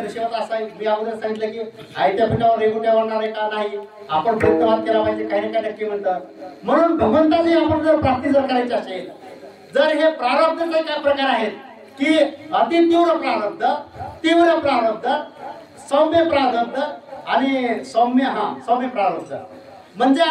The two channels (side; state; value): both; identical; correlation 1.00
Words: नशिबात असा आहे. मी अगोदर सांगितलं की आयत्या पिठावर रेगुट्या वाढणार आहे का नाही? आपण प्रयत्नवाद केला पाहिजे. काही ना काही नक्की म्हणतात. म्हणून भगवंताची आपण जर प्राप्ती जर करायची असेल, जर हे प्रारब्धाचे काय प्रकार आहेत की अति तीव्र प्रारब्ध, सौम्य प्रारब्ध आणि सौम्य प्रारब्ध. म्हणजे